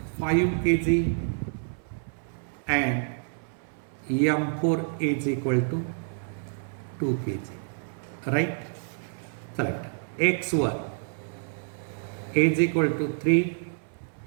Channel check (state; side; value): silent; left; 57 dB below the other